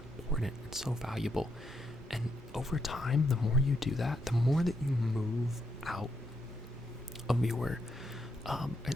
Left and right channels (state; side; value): normal; both; correlation 0.79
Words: important, it's so valuable. And over time, the more you do that, the more that you move out of your